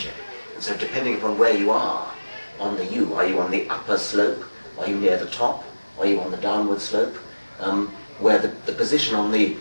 And so depending upon where you are on the U, are you on the upper slope, are you near the top, are you on the downward slope, where the position on the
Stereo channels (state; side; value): inverted; both; correlation -1.00